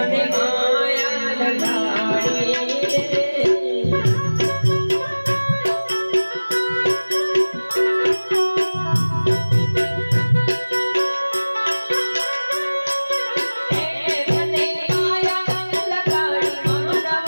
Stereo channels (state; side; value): inverted; both; correlation -1.00